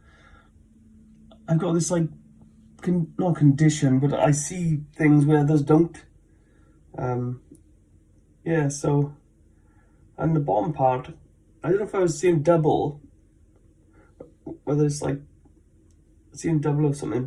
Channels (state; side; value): identical; both; correlation 1.00